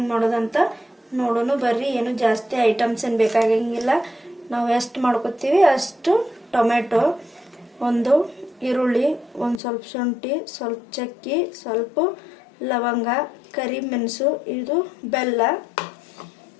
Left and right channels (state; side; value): drops out; right; at 9.6 s